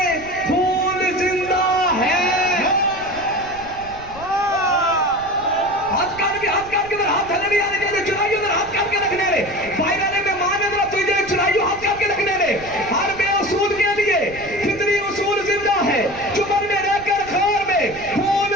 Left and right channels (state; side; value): noise; right; rumble, 18 dB below the sound